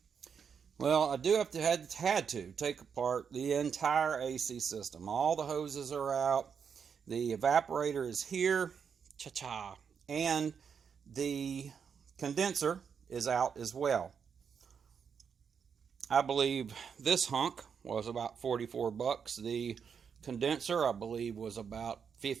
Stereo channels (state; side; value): quieter; left; 6.8 dB